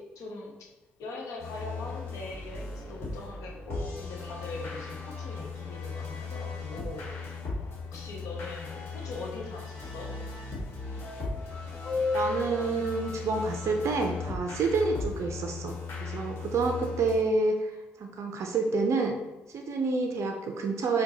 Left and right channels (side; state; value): both; normal; correlation 0.65